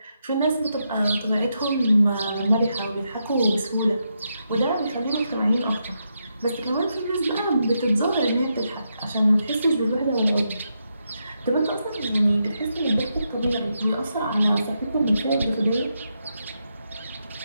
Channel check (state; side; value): inverted; both; correlation -0.83